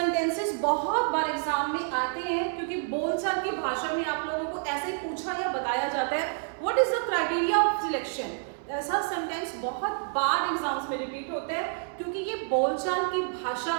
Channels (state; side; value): silent; left; 59 dB below the other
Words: बहुत बार exam में आते हैं क्योंकि बोलचाल की भाषा में आप लोगों को ऐसे पूछा या बताया जाता है what is the criteria of selection. ऐसा सेंटेंस बहुत बार एग्जाम्स में रिपीट होता है क्योंकि ये बोलचाल की भाषा